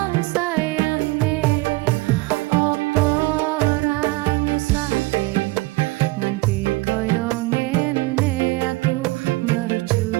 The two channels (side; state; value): left; quieter; 21.8 dB